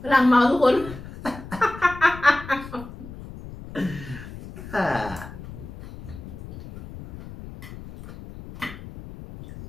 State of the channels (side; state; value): left; noise; rumble, 14 dB below the sound